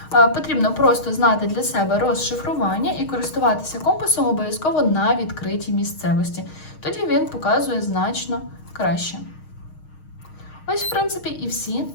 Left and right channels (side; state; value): right; late; 6.4 ms